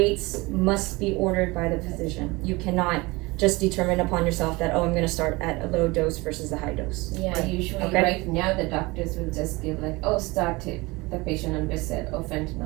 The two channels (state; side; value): quieter; left; 23.4 dB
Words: must be ordered by the physician. You cannot just determine upon yourself that, oh, I'm gonna start at a low dose versus a high dose. Yeah, usually Okay. right now the doctors will just give like, oh, start it, the patient on Versed or